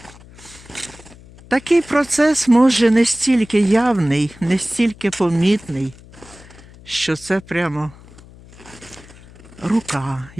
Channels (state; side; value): noise; left; hum, 21 dB below the sound